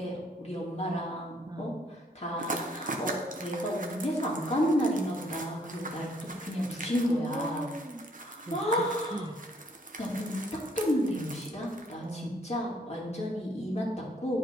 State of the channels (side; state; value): both; normal; correlation 0.65